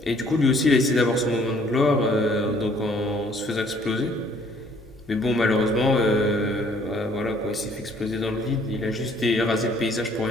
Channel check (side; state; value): both; normal; correlation 0.60